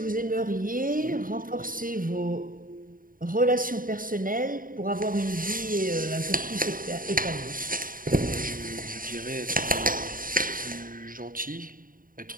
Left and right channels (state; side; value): late; left; 0.41 ms